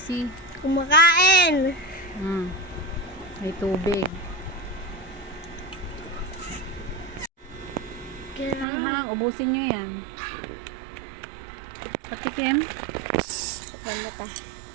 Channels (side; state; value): left; drops out; at 8.7 s